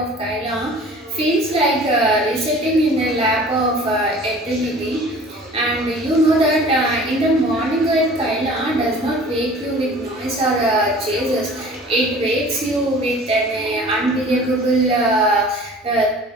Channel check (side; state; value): both; normal; correlation 0.45